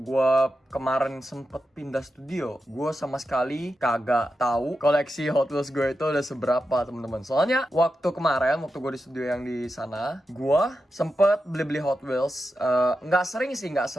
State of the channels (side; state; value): both; normal; correlation 0.89